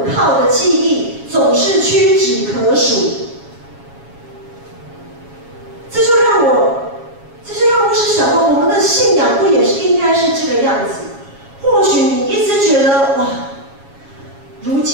靠的记忆总是屈指可数。这就让牧师想到，我们的信仰不也是应该是这个样子？或许你一直觉得哇，如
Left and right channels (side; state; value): left; late; 7.3 ms